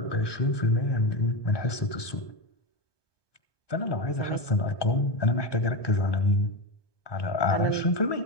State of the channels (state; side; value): late; right; 1.2 ms